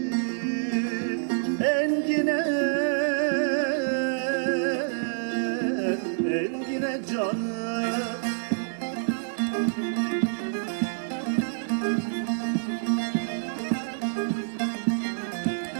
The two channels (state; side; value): silent; left; 60 dB below the other